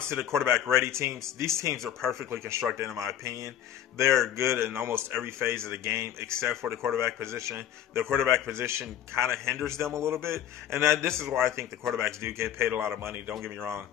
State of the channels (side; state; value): right; quieter; 10.9 dB